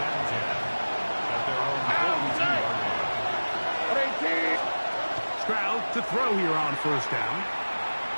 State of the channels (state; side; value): inverted; both; correlation -1.00